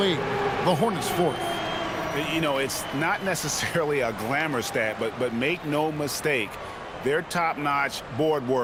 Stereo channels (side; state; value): both; identical; correlation 1.00